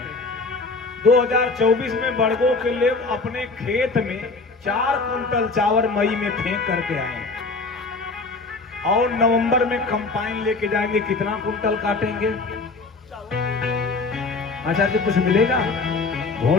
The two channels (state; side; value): quieter; right; 3.8 dB